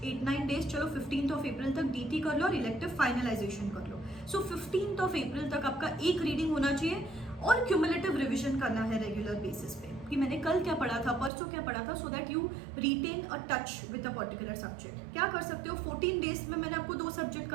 8-9 days, चलो 15th of April तक DT कर लो और इलेक्टिव फाइनलाइजेशन कर लो। सो 15th of April तक आपका एक रीडिंग होना चाहिए और क्यूमुलेटिव रिविजन करना है रेगुलर बेसिस पे कि मैंने कल क्या पढ़ा था, परसों क्या पढ़ा था, so that you retain a touch with a particular subject. क्या कर सकते हो, 14 days में मैंने आपको 2 सब्जेक्ट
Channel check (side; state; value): left; drops out; at 11.3 s